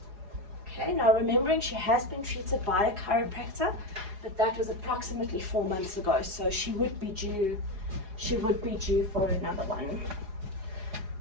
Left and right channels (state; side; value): late; left; 4.8 ms